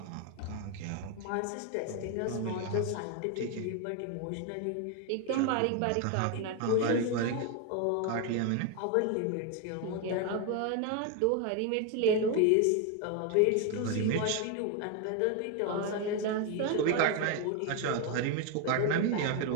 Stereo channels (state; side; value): different; both; correlation 0.01